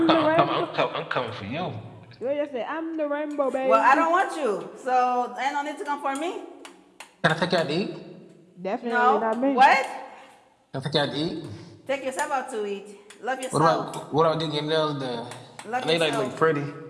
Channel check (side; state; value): both; identical; correlation 1.00